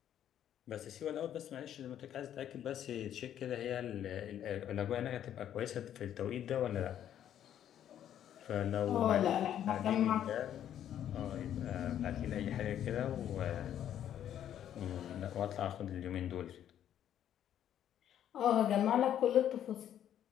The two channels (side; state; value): right; quieter; 10.5 dB